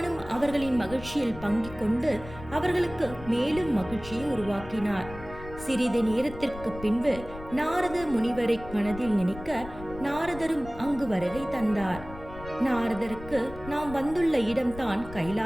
அவர்களின் மகிழ்ச்சியில் பங்கிக் கொண்டு அவர்களுக்கு மேலும் மகிழ்ச்சியை உருவாக்கினார். சிறிது நேரத்திற்கு பின்பு நாரத முனிவரை மனதில் நினைக்க நாரதரும் அங்கு வருகை தந்தார். நாரதருக்கு நாம் வந்துள்ள இடம்தான்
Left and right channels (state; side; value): noise; left; rumble, 14 dB below the sound